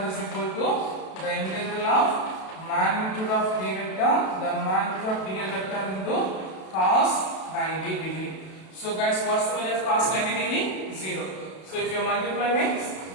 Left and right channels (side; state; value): right; late; 32 ms